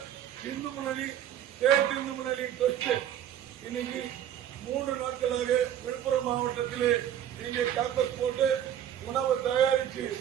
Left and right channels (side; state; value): left; quieter; 10.5 dB